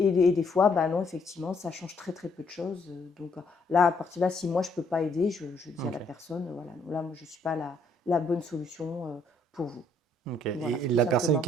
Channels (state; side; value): normal; both; correlation 0.68